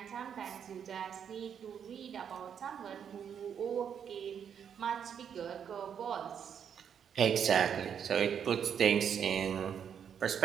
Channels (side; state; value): left; quieter; 8.0 dB